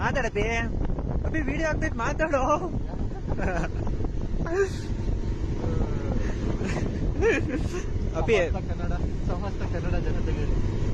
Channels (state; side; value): identical; both; correlation 1.00